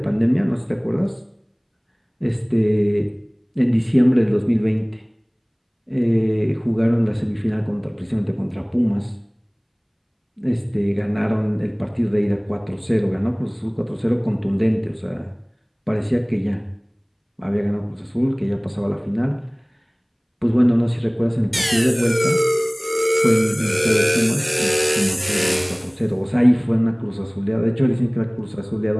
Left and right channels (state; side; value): identical; both; correlation 1.00